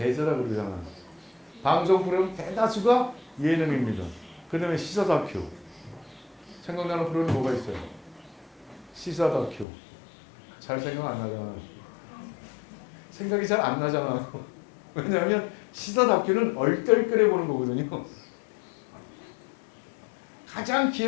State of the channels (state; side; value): drops out; right; at 9.7 s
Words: 그러잖아. 방송 프로그램 대다수가 예능입니다. 그 다음에 시사 다큐. 생각나는 프로그램 뭐가 있어요? 시사 다큐. 잘 생각 안 나잖아. 생각이 잘 안 나잖아. 왜냐하면 시사 다큐는 얼떨결에 보는 거거든요. 가장